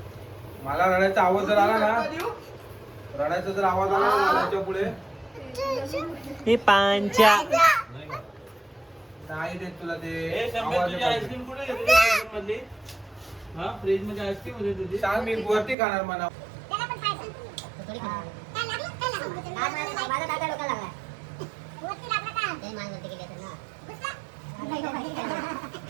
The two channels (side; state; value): left; drops out; at 15.8 s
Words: मला रडायचा आवाज जर आला ना, रडायचा जर आवाज आला ना रडायच्या पुढे हे पांच्या नाही देत तुला ते ए, शंभर आवाज तुझी येतो. आईस्क्रीम कुठे घेतली फ्रीज मधली? हा, फ्रीज मध्ये आईस्क्रीम होती तुझी. सांग मी वरती खाणार म्हणा. त्याला पण खायचं. थोडी खाणार. काय लागलं? काय लागलं? माझा दादा डोका लागला. वरती लागला का? ते मान वरती गेली असेल ना. घुसला?